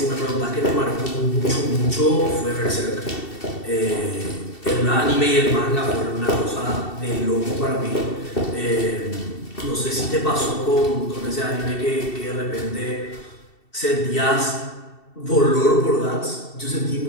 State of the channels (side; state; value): right; late; 2.7 ms